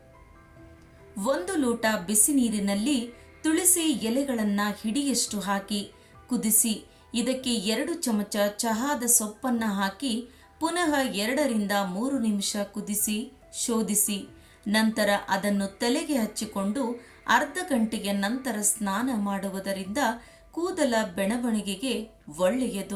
1 ಲೋಟ ಬಿಸಿ ನೀರಿನಲ್ಲಿ ತುಳಸಿ ಎಲೆಗಳನ್ನು ಹಿಡಿಯಷ್ಟು ಹಾಕಿ ಕುದಿಸಿ ಇದಕ್ಕೆ 2 ಚಮಚ ಚಹಾದ ಸೊಪ್ಪನ್ನು ಹಾಕಿ ಪುನಃ 2 ರಿಂದ 3 ನಿಮಿಷ ಕುದಿಸಿ ಶೋಧಿಸಿ ನಂತರ ಅದನ್ನು ತಲೆಗೆ ಹಚ್ಚಿಕೊಂಡು ಅರ್ಧ ಗಂಟೆಯ ನಂತರ ಸ್ನಾನ ಮಾಡುವುದರಿಂದ ಕೂದಲ ಬೆಳವಣಿಗೆಗೆ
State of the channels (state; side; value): identical; both; correlation 1.00